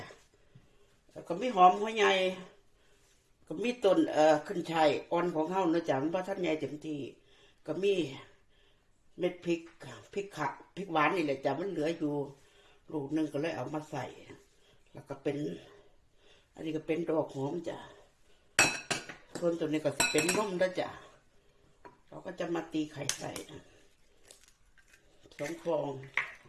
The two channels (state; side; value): identical; both; correlation 1.00